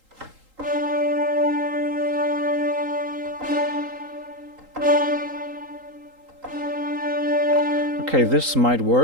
Okay, this might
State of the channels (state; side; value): late; left; 3.8 ms